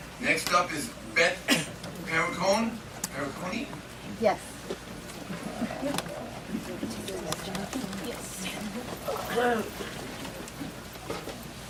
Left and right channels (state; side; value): identical; both; correlation 1.00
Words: Next up is Beth Perricone. Yes.